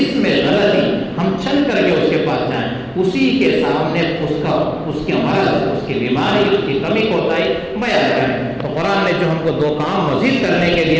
میں غلطی ہم چھن کر کے اس کے پاس جائیں، اسی کے سامنے اس کے مرض، اس کی بیماری، اس کی کمی کوتاہی بیان کریں. تو قرآن نے جو ہم کو دو کام مزید کرنے کے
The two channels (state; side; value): identical; both; correlation 1.00